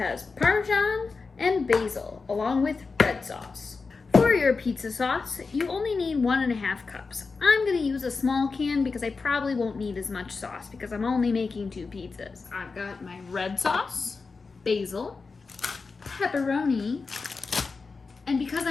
Parmesan and basil, along with red sauce. For your pizza sauce, you only need 1.5 cups. I'm gonna use a small can because I probably won't need as much sauce because I'm only making 2 pizzas. I've got my red sauce, basil, pepperoni, and because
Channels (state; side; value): quieter; right; 4.4 dB